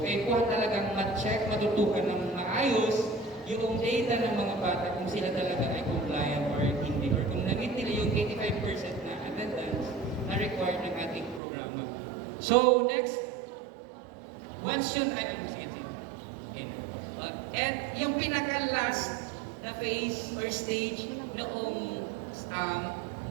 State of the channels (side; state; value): left; drops out; at 11.4 s